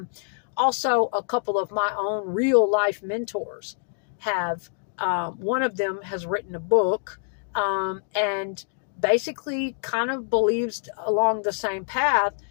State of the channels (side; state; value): right; silent; digital silence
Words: Also, a couple of my own real-life mentors have, one of them has written a book, and basically kind of believes along the same path